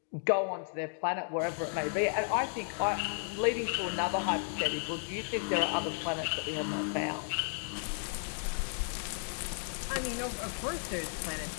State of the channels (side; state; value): right; silent; digital silence